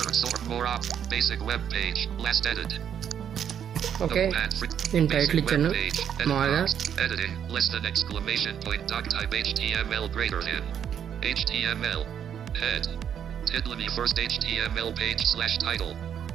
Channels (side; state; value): left; quieter; 8.8 dB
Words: sort more up, basic web page, last edit. Okay, నేను టైటిల్ ఇచ్చాను మామూలుగా. Editing, less than exclamation point, doc type HTML greater than. HTML, head. Title me first HTML page slash title,